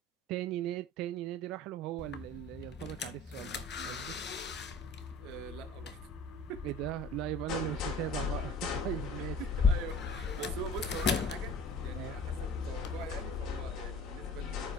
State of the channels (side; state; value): both; normal; correlation 0.44